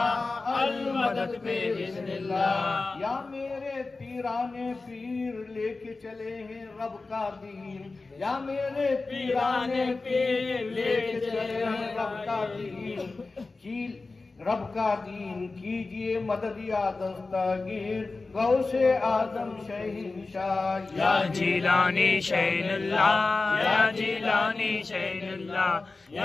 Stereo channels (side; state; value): right; quieter; 3.7 dB